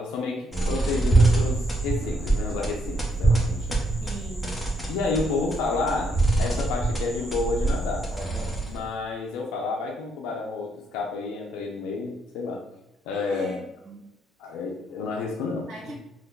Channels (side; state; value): both; normal; correlation 0.74